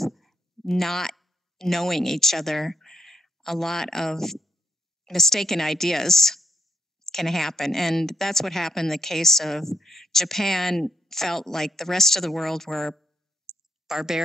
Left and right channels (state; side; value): normal; both; correlation 0.76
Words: not knowing each other. A lot of mistaken ideas can happen, and that's what happened in the case of Japan. Felt like the rest of the world were